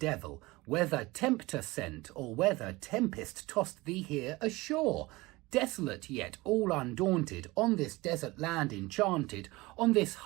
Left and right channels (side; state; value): left; quieter; 21.5 dB